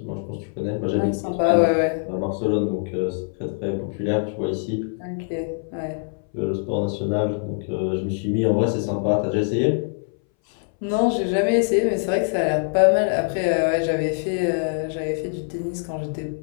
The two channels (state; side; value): silent; right; 62 dB below the other